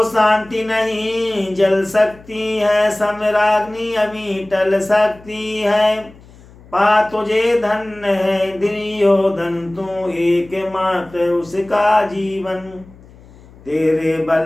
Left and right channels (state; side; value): noise; left; hum, 23 dB below the sound